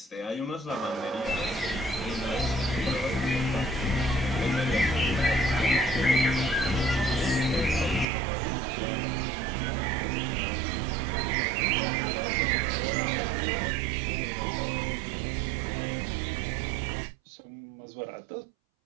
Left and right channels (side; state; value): left; drops out; at 8.1 s